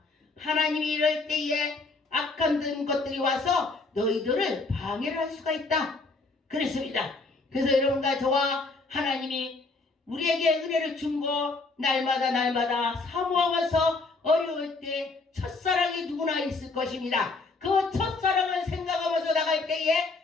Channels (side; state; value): right; quieter; 3.7 dB